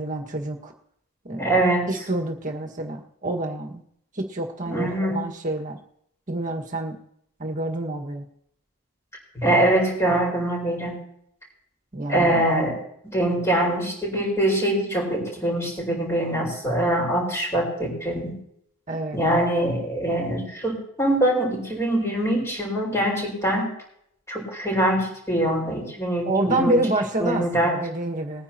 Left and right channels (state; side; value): normal; both; correlation 0.41